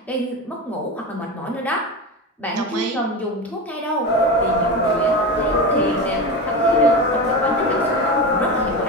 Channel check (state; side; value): normal; both; correlation 0.23